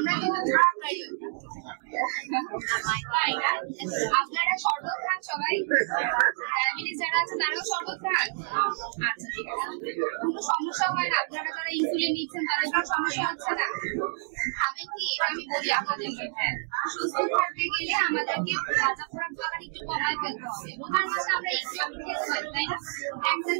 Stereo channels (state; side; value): silent; left; digital silence